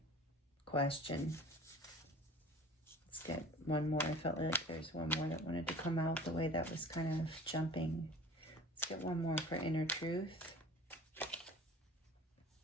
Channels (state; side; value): normal; both; correlation 0.43